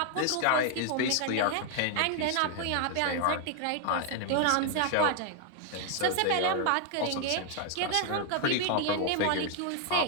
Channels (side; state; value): both; different; correlation 0.00